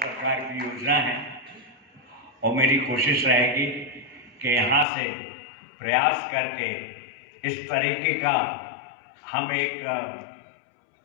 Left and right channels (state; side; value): drops out; right; at 4.9 s